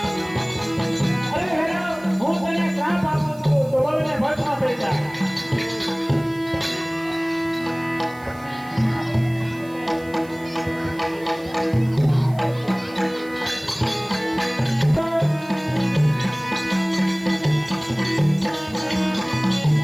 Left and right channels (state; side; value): noise; right; hiss, 25 dB below the sound